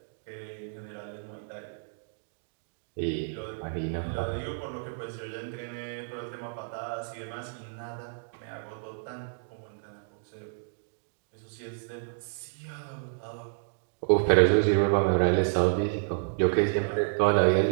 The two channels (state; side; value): silent; left; digital silence